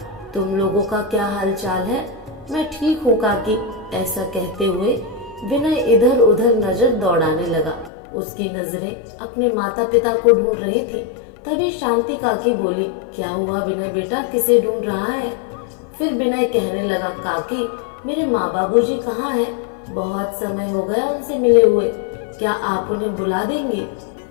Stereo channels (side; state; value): right; drops out; at 7.9 s